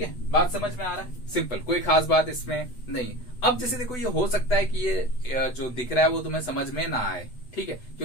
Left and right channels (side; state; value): right; late; 8.1 ms